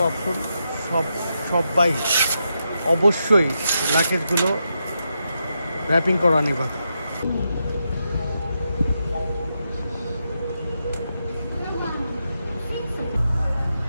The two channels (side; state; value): both; inverted; correlation -0.84